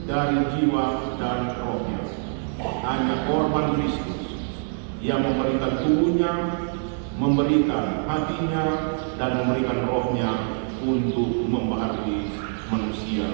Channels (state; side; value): silent; left; digital silence